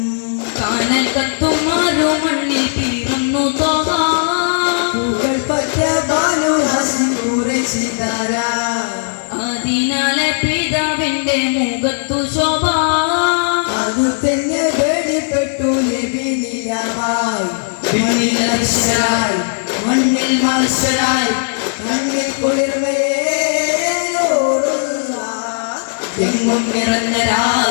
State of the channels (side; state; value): right; silent; digital silence